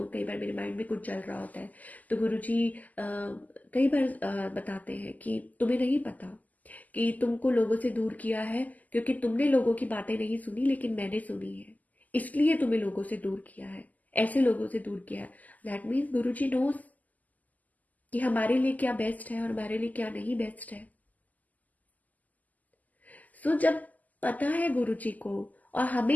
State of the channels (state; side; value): late; right; 0.079 ms